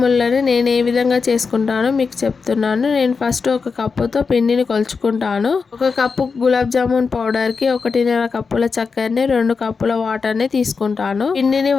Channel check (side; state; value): right; quieter; 5.1 dB